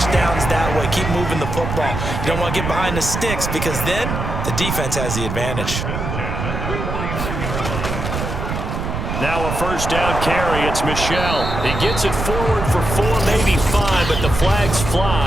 downs that way. Keep moving the football. You don't want to get behind the sticks because then the defense has the advantage. Now a first down carry. It's Michel. He gets it forward for 4, maybe 5, but the flags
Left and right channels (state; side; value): noise; right; rumble, 4 dB below the sound